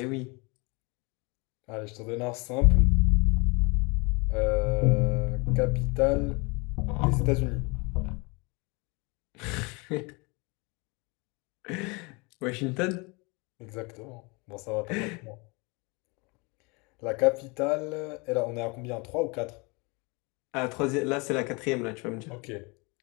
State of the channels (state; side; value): quieter; right; 28.7 dB